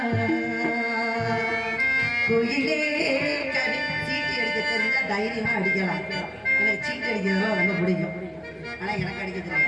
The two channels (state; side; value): identical; both; correlation 1.00